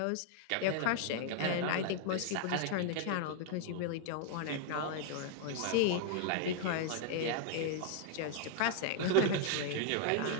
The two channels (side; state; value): both; different; correlation 0.00